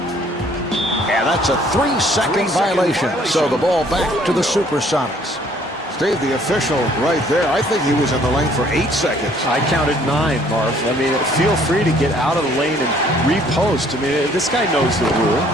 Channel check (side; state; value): both; normal; correlation 0.60